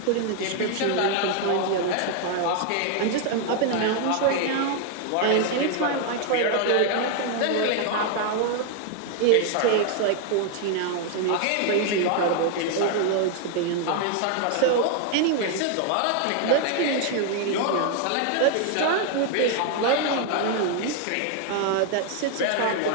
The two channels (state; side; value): different; both; correlation 0.00